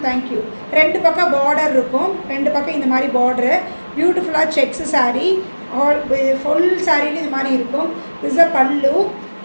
Thank you. 2 பக்கம் பார்டர் இருக்கும். 2 பக்கம் இந்த மாதிரி பார்டரு. பியூட்டிஃபுல்லாக செக்ஸு சாரீ. ஆல் ஃபுல் சாரியில் இது மாதிரி இருக்கும். This a pallu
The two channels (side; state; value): both; inverted; correlation -1.00